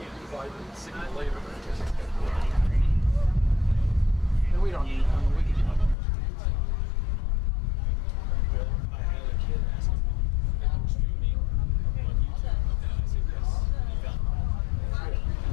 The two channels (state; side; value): drops out; right; at 6.0 s